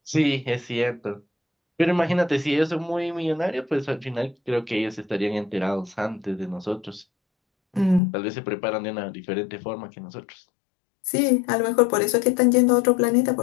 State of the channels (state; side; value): drops out; right; at 8.0 s